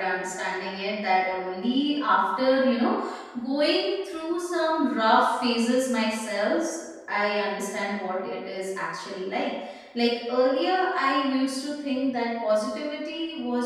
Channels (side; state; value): both; identical; correlation 1.00